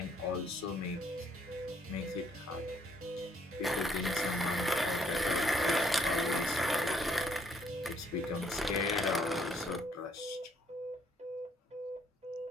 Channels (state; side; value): normal; both; correlation 0.67